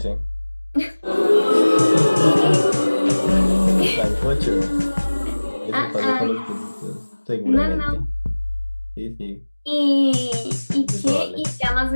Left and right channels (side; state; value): both; inverted; correlation -1.00